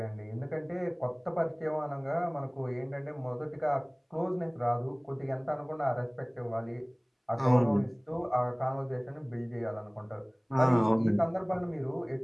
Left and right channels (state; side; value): identical; both; correlation 1.00